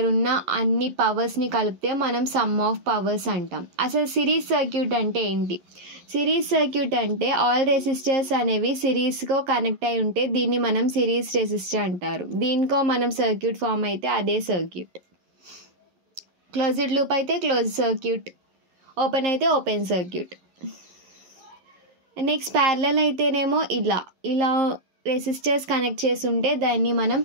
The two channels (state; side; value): late; left; 11 ms